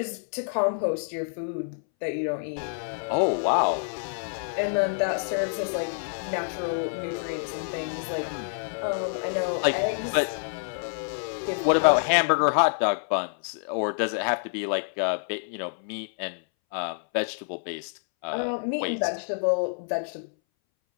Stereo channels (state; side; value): silent; right; 60 dB below the other